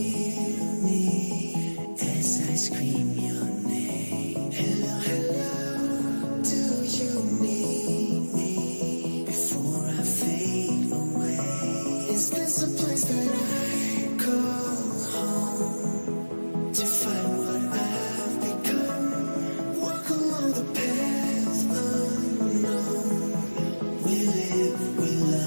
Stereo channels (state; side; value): inverted; both; correlation -1.00